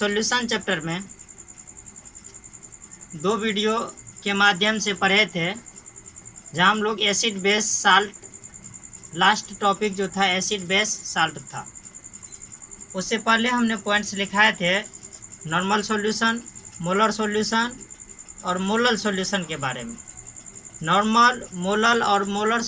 चैप्टर में 2 वीडियो के माध्यम से पढ़े थे, जहां हम लोग acid base salt, last topic जो था एसिड बेस साल्ट था। उससे पहले हमने पॉइंट्स लिखाए थे नॉर्मल सॉल्यूशन, मोलर सॉल्यूशन और मोलल सॉल्यूशन के बारे में। नॉर्मल, मोलल और मोलर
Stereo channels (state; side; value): identical; both; correlation 1.00